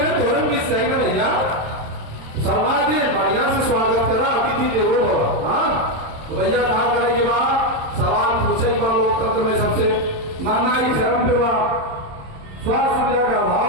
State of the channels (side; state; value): left; late; 26 ms